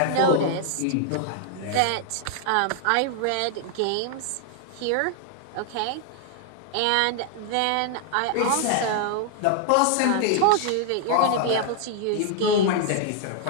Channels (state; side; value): different; both; correlation 0.00